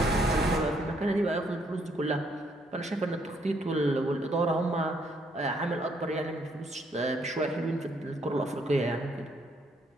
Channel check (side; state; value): both; normal; correlation 0.70